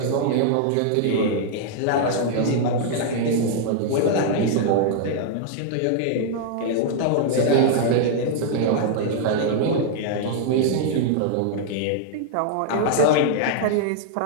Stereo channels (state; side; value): different; both; correlation -0.01